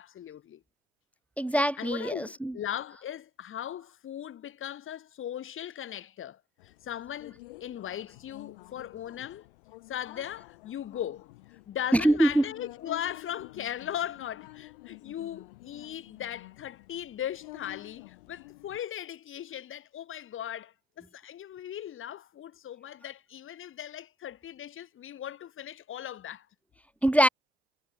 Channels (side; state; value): both; normal; correlation 0.66